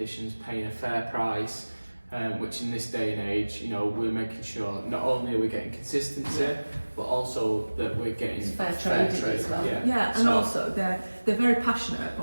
paying a fair price, which in this day and age, you know, we're making sure not only are we getting consistency, but also that we're getting fair trade as well. Yeah, and also they're very passionate,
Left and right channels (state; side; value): inverted; both; correlation -1.00